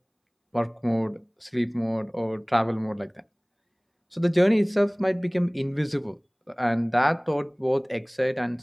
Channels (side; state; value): both; identical; correlation 1.00